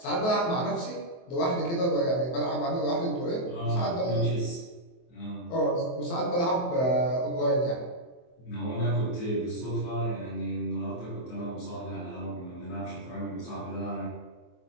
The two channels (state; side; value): late; right; 23 ms